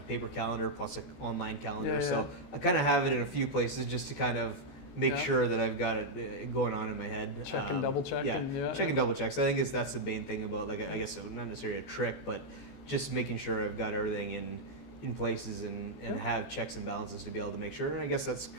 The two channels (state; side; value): late; right; 14 ms